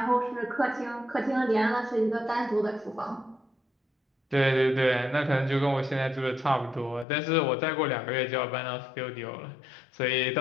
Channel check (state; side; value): drops out; right; at 7.1 s